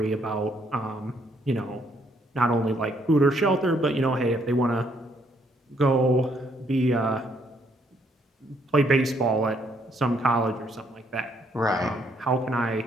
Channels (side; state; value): both; normal; correlation 0.70